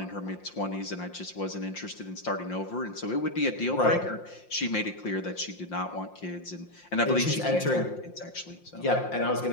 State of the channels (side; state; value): right; late; 5.7 ms